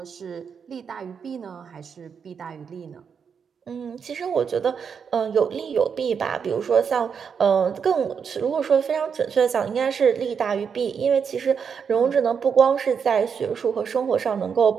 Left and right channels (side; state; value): left; quieter; 6.6 dB